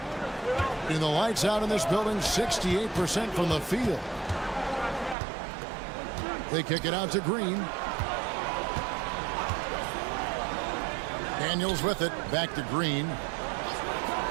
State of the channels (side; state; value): left; drops out; at 5.2 s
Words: And the lights out in this building, 68% from the field. They kick it out to Green. Daniels with it, back to Green.